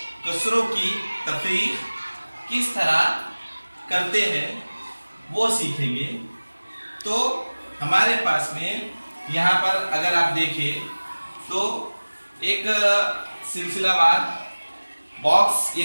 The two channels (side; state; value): both; inverted; correlation -1.00